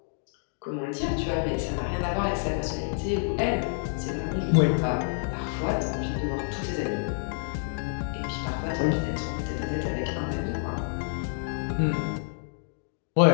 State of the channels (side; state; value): right; silent; digital silence